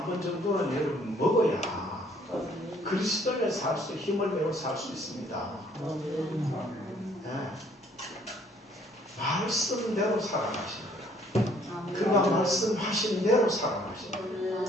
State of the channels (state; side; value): normal; both; correlation 0.62